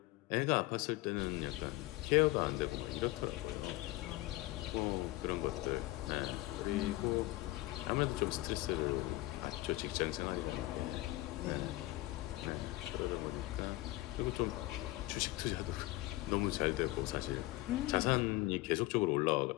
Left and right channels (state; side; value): quieter; right; 19.2 dB